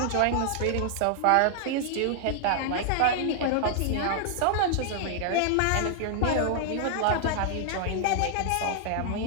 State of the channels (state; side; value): different; both; correlation 0.00